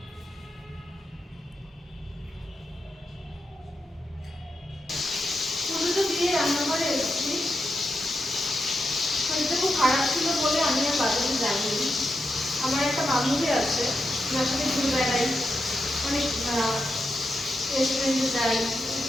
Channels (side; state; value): both; normal; correlation 0.86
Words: পুজোটা দিয়ে রান্নাঘরে এসেছি। শরীরটা খুব খারাপ ছিল বলে আমি আর বাজারে যাইনি। আমার একটা বান্ধবী আছে, যার সাথে ঘুরে বেড়াই, অনেক রেস্টুরেন্টে যাই,